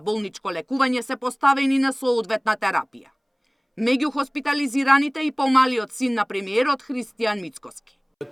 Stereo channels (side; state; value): both; identical; correlation 1.00